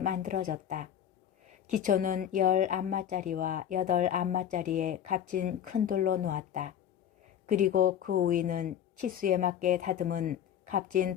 기초는 10안마짜리와 8안마짜리의 값진 큰 돌로 놓았다. 그리고 그 위는 치수에 맞게 다듬은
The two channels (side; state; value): right; quieter; 9.6 dB